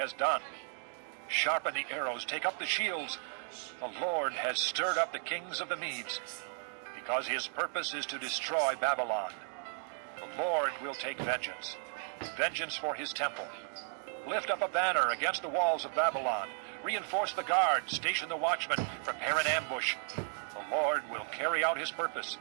done. Sharpen the arrows, take up the shields. The Lord has stirred up the kings of the Medes, because his purpose is to destroy Babylon. The Lord will take vengeance, vengeance for his temple. Lift up a banner against the walls of Babylon. Reinforce the guards, station the watchmen, prepare an ambush. The Lord will carry out his purpose,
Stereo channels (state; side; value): silent; left; 55 dB below the other